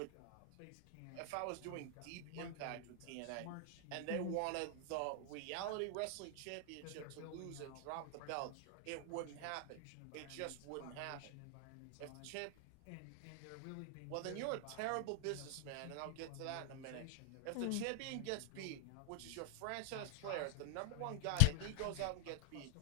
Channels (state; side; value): different; both; correlation 0.00